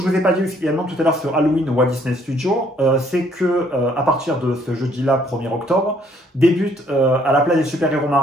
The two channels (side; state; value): both; normal; correlation 0.64